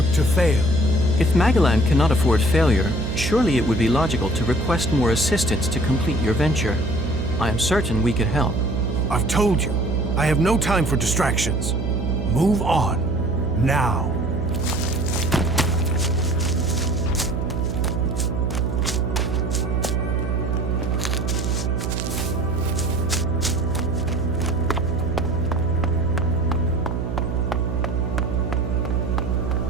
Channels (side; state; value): right; noise; hum, 3 dB below the sound